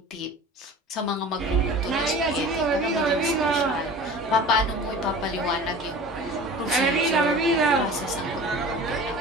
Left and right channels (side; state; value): both; normal; correlation 0.39